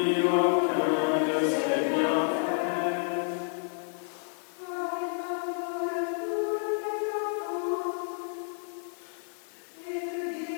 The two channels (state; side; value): silent; right; digital silence